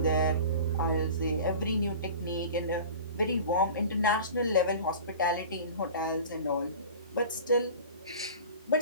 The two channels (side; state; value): both; inverted; correlation -0.38